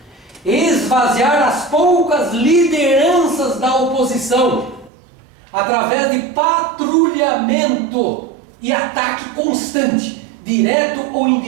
Esvaziar as poucas lideranças da oposição através de patrulhamento e ataque constante, direto ou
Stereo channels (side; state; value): left; drops out; at 4.9 s